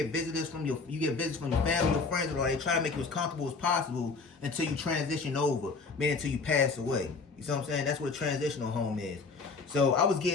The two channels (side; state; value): right; quieter; 4.3 dB